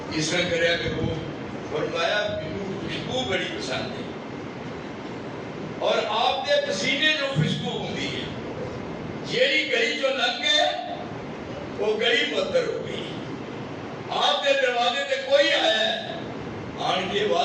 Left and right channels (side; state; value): both; identical; correlation 1.00